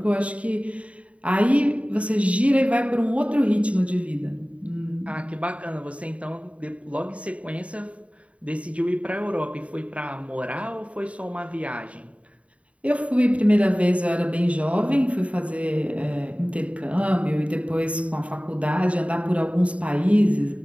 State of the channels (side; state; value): left; late; 0.065 ms